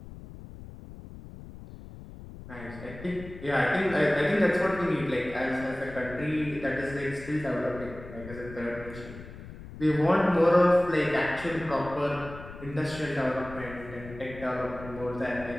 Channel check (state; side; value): noise; left; rumble, 14 dB below the sound